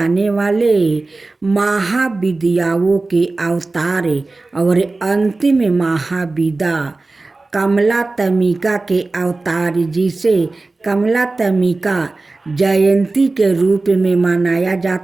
वाले महाविद्याओं के अवतार और अंतिम महाविद्या कमलात्मिका के अवतार जिसे कमलात्मिका जयंती के रूप में मनाया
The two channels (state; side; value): quieter; left; 3.4 dB